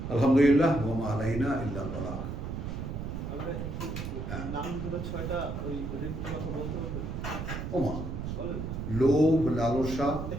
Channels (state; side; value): noise; right; rumble, 5 dB below the sound